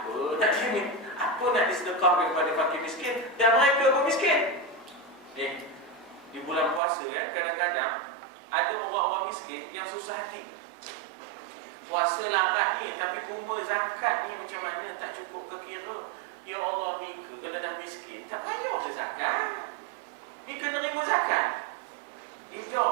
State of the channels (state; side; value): drops out; left; at 6.8 s